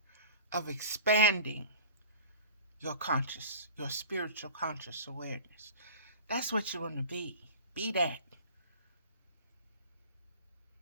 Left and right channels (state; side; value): inverted; both; correlation -0.39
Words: of expanding your spiritual conscious awareness. That's what you want to be. Be that.